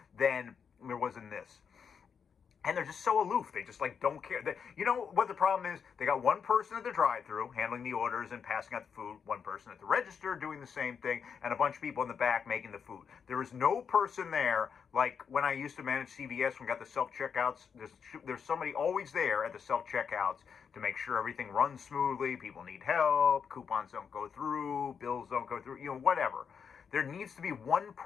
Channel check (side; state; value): right; quieter; 6.7 dB